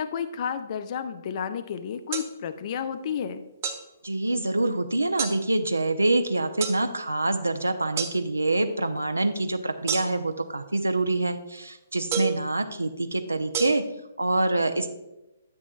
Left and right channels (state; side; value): inverted; both; correlation -0.84